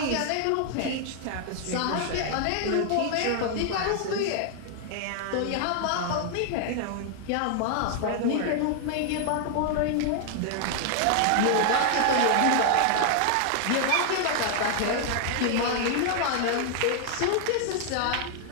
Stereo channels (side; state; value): both; different; correlation 0.00